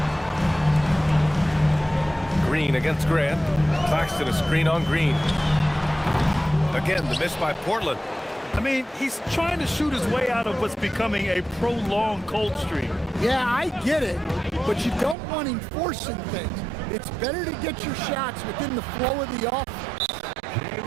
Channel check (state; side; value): drops out; left; at 15.2 s